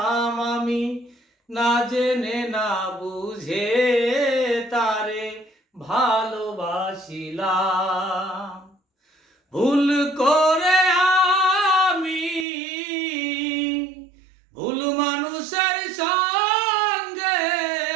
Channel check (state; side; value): drops out; left; at 12.5 s